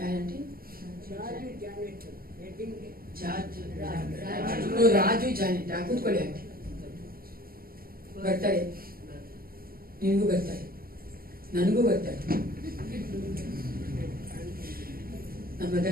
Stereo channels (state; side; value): late; left; 0.43 ms